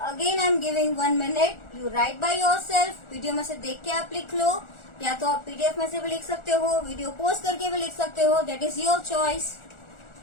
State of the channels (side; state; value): right; late; 1.4 ms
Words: again I am giving 1 minute, you right by yourself. Video में से देख के आप लिख लो, या तो आप PDF में से भी लिख सकते हो, वीडियो पोस्ट करके भी लिख सकते हो, that is your choice.